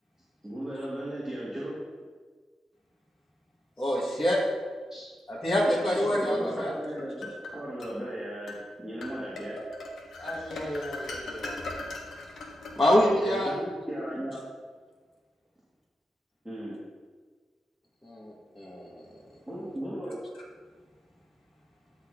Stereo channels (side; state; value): both; normal; correlation 0.88